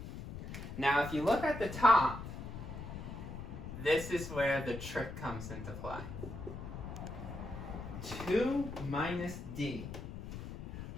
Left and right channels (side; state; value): left; noise; rumble, 8 dB below the sound